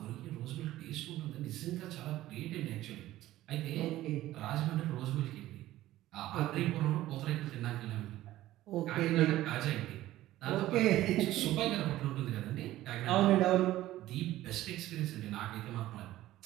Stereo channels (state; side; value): quieter; left; 15.2 dB